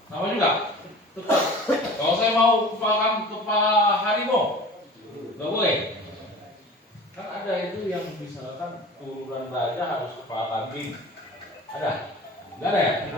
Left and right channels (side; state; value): both; normal; correlation 0.41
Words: sama juga. Tetap. Kalau saya mau kepala harimau, nggak boleh. Kan ada itu yang misalkan turunan raja harus kepala kambing. Ada? Enggak ada ya?